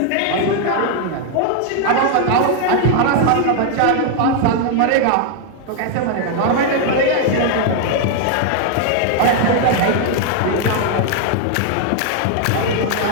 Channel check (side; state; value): both; different; correlation 0.00